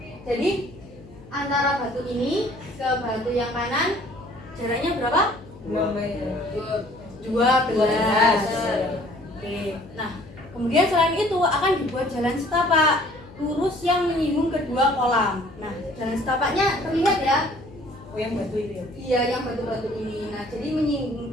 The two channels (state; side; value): noise; left; hum, 20 dB below the sound